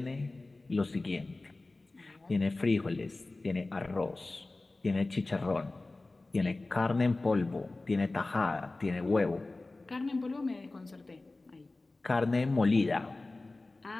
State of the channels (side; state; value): right; quieter; 3.1 dB